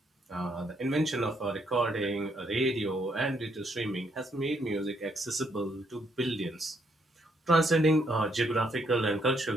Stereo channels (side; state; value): both; normal; correlation 0.72